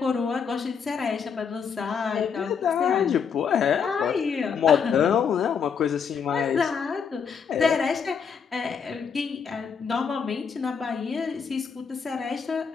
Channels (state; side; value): quieter; right; 6.5 dB